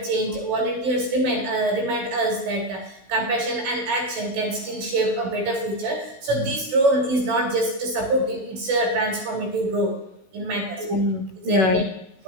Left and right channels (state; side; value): late; left; 16 ms